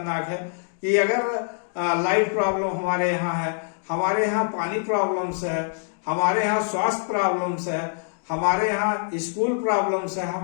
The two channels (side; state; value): right; silent; digital silence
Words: है कि अगर लाइट प्रॉब्लम हमारे यहाँ है, हमारे यहाँ पानी प्रॉब्लम्स है, हमारे यहाँ स्वास्थ्य प्रॉब्लम्स है, हमारे यहाँ स्कूल प्रॉब्लम्स है,